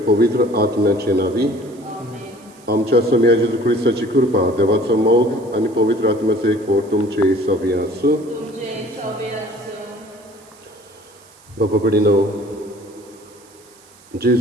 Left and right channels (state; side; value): noise; right; hiss, 27 dB below the sound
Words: पवित्र आत्म्याचे नावी आमच्या स्वामी जेजू ख्रिस्ताची कृपा देवाचो मोग आणि पवित्र आत्म्याचे एक फोड तुमचे सवी आसूं. बापा कडेनो